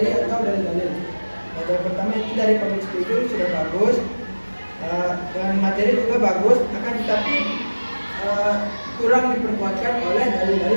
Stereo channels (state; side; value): inverted; both; correlation -1.00